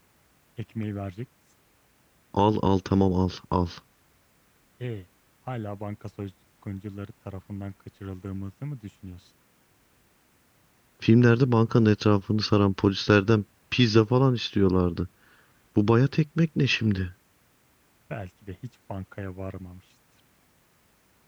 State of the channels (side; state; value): both; identical; correlation 1.00